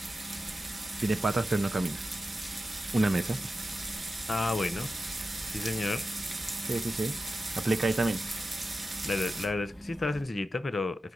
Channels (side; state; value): both; normal; correlation 0.92